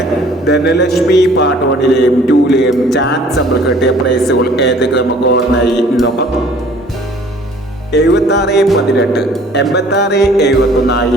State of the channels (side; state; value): both; normal; correlation 0.54